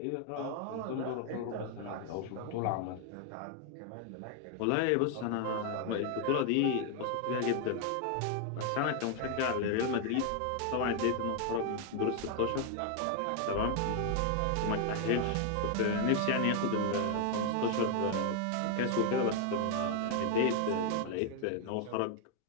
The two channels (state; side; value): different; both; correlation 0.00